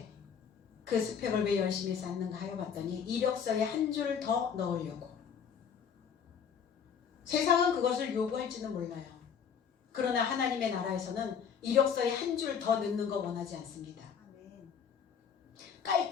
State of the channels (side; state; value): right; quieter; 7.2 dB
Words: 그 스펙을 왜 열심히 쌓는가 하여 봤더니 이력서에 한 줄 더 넣으려고. 세상은 그것을 요구할지는 몰라요. 그러나 하나님의 나라에서는 이력서에 한 줄 더 넣는 거 원하지 않습니다.